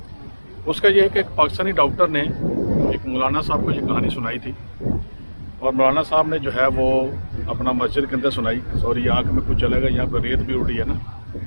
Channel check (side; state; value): both; inverted; correlation -1.00